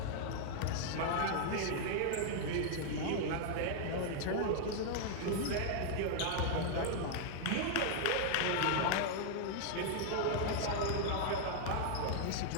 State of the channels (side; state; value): both; different; correlation -0.01